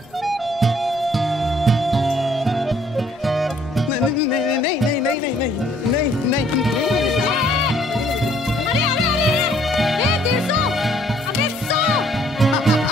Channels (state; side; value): normal; both; correlation 0.62